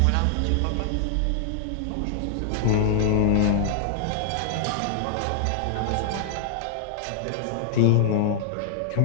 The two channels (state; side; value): different; both; correlation -0.01